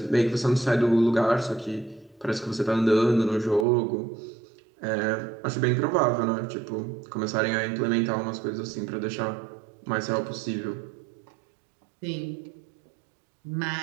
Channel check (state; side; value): drops out; left; at 3.7 s